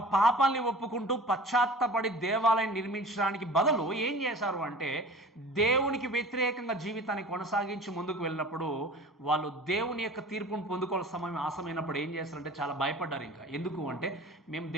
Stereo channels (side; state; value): both; normal; correlation 0.41